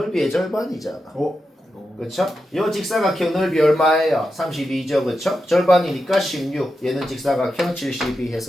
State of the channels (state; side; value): normal; both; correlation 0.88